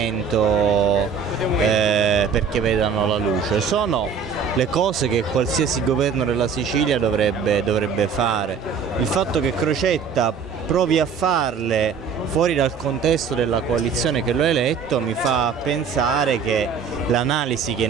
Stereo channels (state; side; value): quieter; left; 6.1 dB